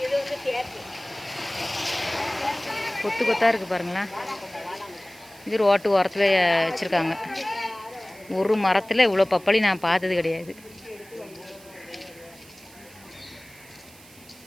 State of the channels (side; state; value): right; noise; hiss, 22 dB below the sound